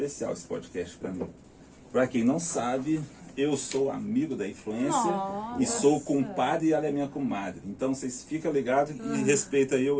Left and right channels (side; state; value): both; identical; correlation 1.00